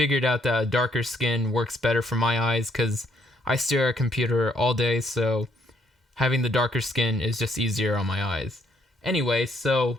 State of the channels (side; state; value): both; normal; correlation 0.70